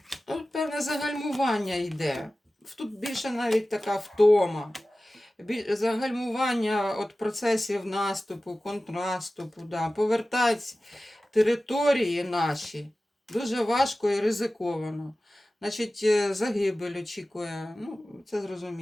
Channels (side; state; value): both; normal; correlation 0.96